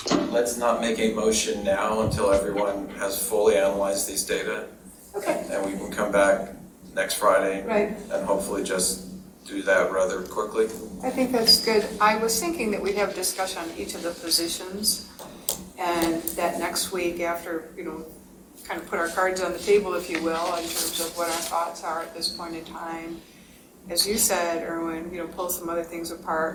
Let's not make a motion now until everyone has fully analyzed these data. Okay. And we can come back next Friday. Right. And hopefully just do that rather quickly. I think that's good. I was thinking that we'd have a discussion on each of the positions, and that next week after, kind of put our cards on the table, if you will, in terms of what our thoughts are at this point in time. As you said, Erwin, pull some other things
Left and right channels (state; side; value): identical; both; correlation 1.00